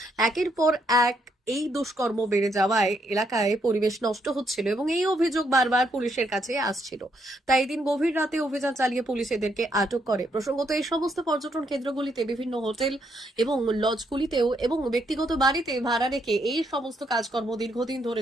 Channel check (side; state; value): both; normal; correlation 0.75